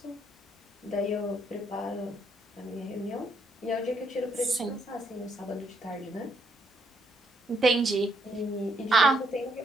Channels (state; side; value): normal; both; correlation 0.72